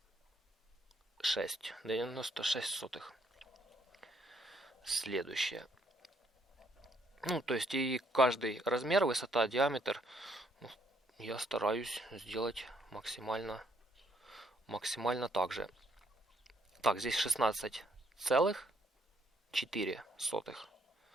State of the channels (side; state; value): both; normal; correlation 0.69